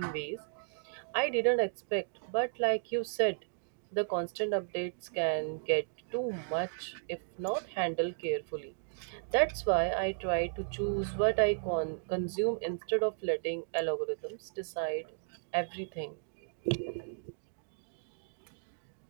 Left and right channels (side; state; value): left; silent; digital silence